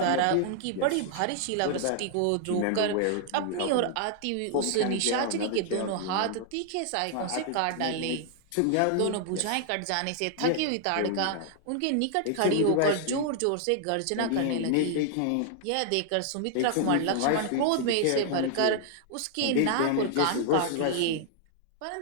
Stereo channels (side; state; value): both; different; correlation 0.00